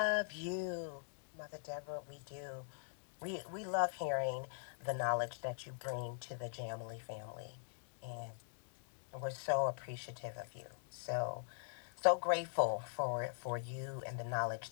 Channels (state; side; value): silent; right; digital silence